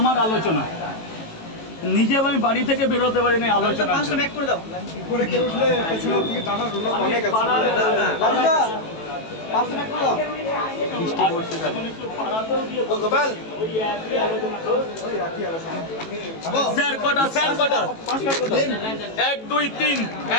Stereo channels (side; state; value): right; late; 18 ms